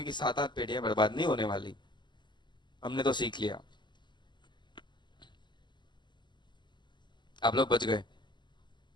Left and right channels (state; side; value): late; right; 0.22 ms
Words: की 7-8 पेड़ियां बर्बाद नहीं होने वाली, हमने तो सीख लिया, आप लोग बच गए।